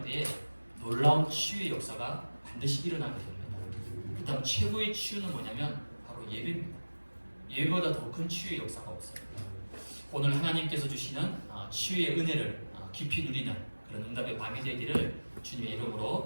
때에 놀라운 치유의 역사가 반드시 일어나게 됩니다. 그 다음 최고의 치유는 뭐냐면 바로 예배입니다. 예배보다 더 큰 치유의 역사가 없어요. 오늘 하나님께서 주시는 치유의 은혜를 깊이 누리는 그런 응답의 밤이 되기를 주님의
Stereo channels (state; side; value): inverted; both; correlation -1.00